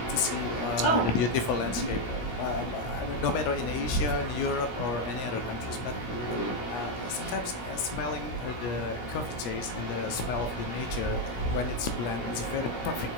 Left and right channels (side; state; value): right; late; 17 ms